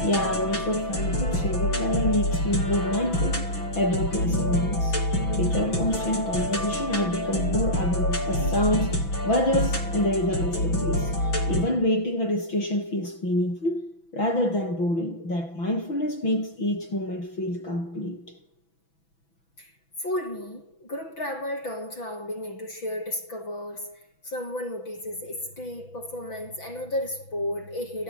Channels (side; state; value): right; late; 6.0 ms